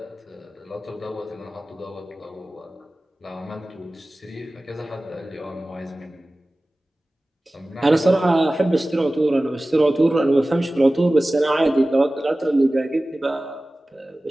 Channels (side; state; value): both; normal; correlation 0.97